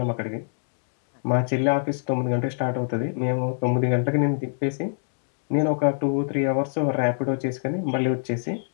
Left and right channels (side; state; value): right; silent; digital silence